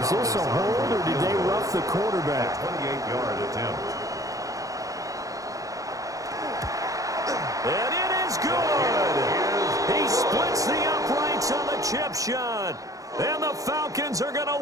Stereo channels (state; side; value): late; left; 0.16 ms